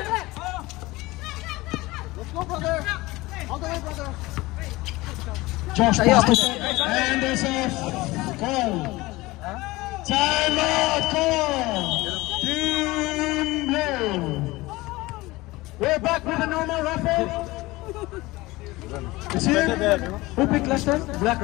Let's go, brother. All the way, brother. Josh passed it, and there's a call. Timeout call. Team Blue. We're back with a normal raffle. It's here. Who picked last time? Black,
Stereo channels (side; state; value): right; quieter; 20.4 dB